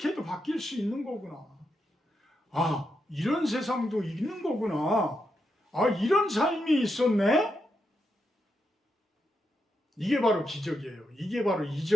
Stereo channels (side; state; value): both; normal; correlation 0.84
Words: 바뀔 수 있는 거구나. 아, 이런 세상도 있는 거구나. 아, 이런 삶이 있었네? 이게 바로 기적이에요. 이게 바로